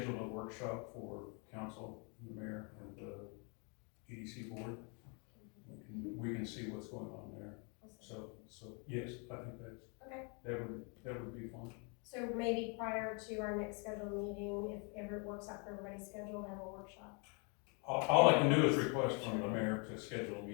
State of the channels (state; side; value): quieter; right; 35.2 dB